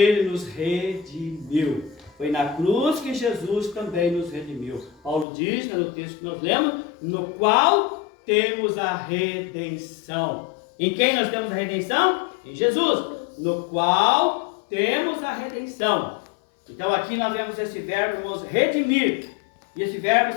nos redimiu. Foi na cruz que Jesus também nos redimiu. Paulo diz, no texto que nós lemos, no qual temos a redenção. Em quem nós temos a redenção? Em Jesus. No qual temos a redenção. Então aqui nós vemos esse verbo, irmãos, redimir. E esse verbo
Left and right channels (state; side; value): drops out; right; at 5.2 s